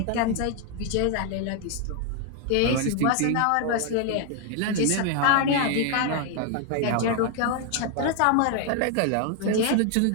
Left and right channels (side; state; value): both; different; correlation 0.00